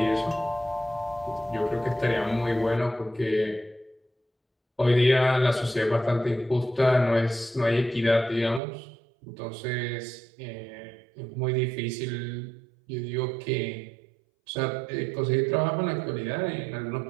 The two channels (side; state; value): left; drops out; at 8.6 s